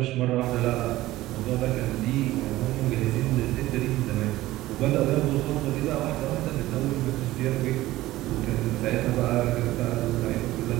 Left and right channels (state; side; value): quieter; left; 16.6 dB